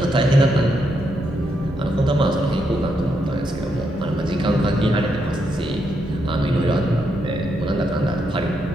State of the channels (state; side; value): normal; both; correlation 0.80